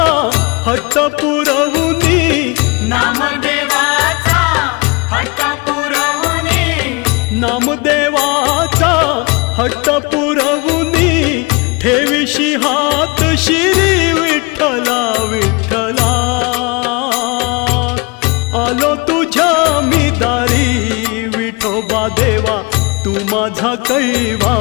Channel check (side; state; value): right; quieter; 28.3 dB